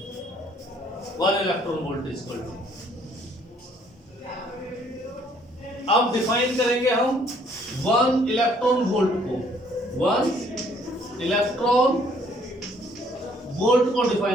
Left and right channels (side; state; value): both; normal; correlation 0.62